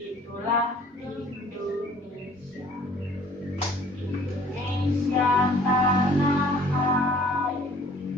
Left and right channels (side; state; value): both; normal; correlation 0.53